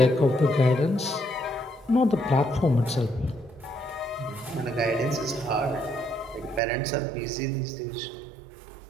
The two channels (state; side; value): drops out; left; at 6.6 s